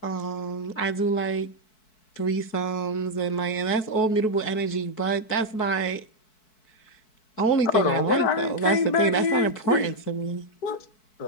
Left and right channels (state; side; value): late; right; 4.6 ms